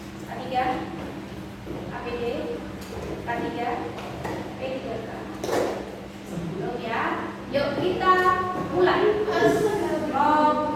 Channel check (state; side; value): identical; both; correlation 1.00